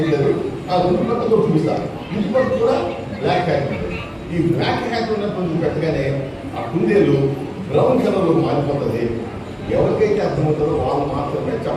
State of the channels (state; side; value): identical; both; correlation 1.00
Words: ఆ రెండు పక్కతో చూపిస్తాను. ఇంటి పక్క కూడా బ్లాక్ హ్యాక్ ఉంది. ఈ బ్లాక్ హ్యాక్ ఉన్నప్పుడు పెట్టగానే ఆ కుందేలు బ్రౌన్ కలర్లో మారిపోతుంది. ఎవరికైతే అర్థమవుతుందో వాళ్ళు మాత్రమే